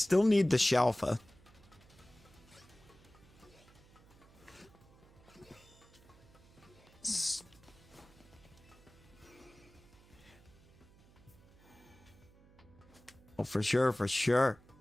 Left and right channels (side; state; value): right; noise; hum, 25 dB below the sound